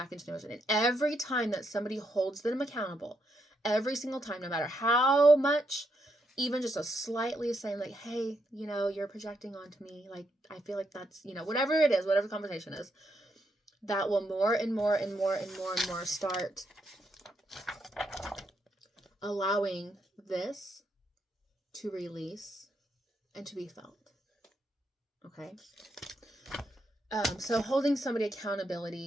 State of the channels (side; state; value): both; normal; correlation 0.79